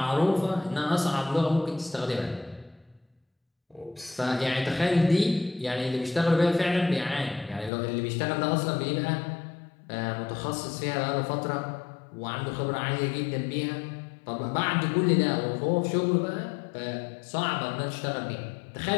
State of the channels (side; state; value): right; drops out; at 7.7 s